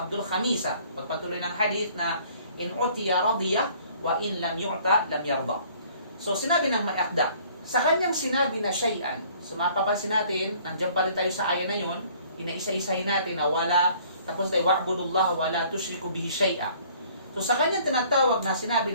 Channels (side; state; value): both; inverted; correlation -0.56